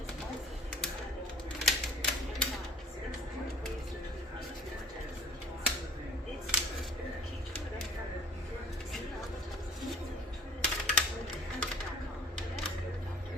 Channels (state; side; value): normal; both; correlation 0.49